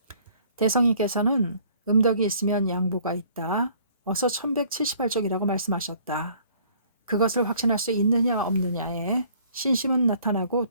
대성이께서는 음덕이 있으면 양보가 있다. 어서 1178쪽이라고 말씀하셨다. 그것을 확신할 수 있느냐 없느냐에 신심은 나타나고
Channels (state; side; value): inverted; both; correlation -0.57